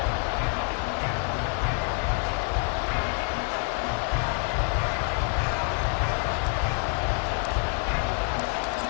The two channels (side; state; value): right; quieter; 38.2 dB